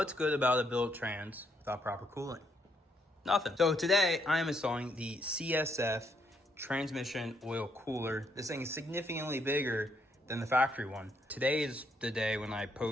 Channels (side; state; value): both; normal; correlation 0.73